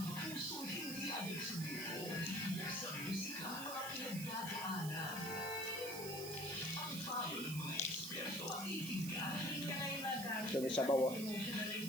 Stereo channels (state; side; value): noise; right; hiss, 8 dB below the sound